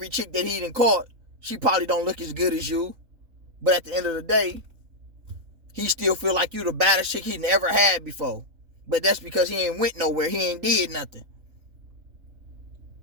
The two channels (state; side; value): late; left; 3.7 ms